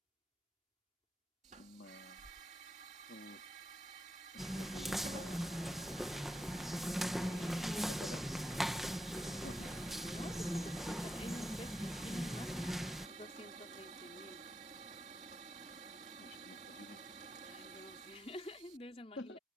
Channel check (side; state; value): both; normal; correlation 0.86